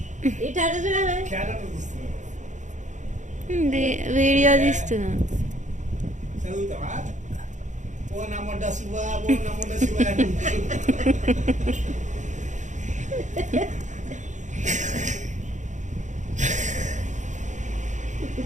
ఇట అట్ట చూడ. వీడియో తీస్తున్నా.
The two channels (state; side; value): late; left; 0.35 ms